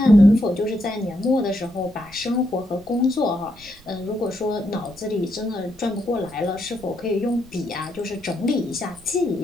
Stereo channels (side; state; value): right; noise; rumble, 24 dB below the sound